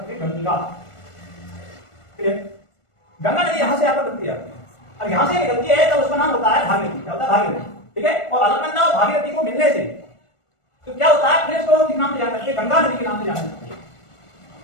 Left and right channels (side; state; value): right; late; 1.4 ms